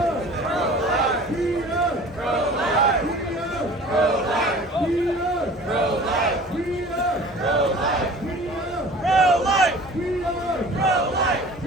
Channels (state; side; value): normal; both; correlation 0.44